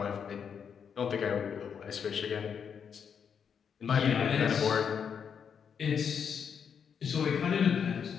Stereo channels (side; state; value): right; quieter; 7.2 dB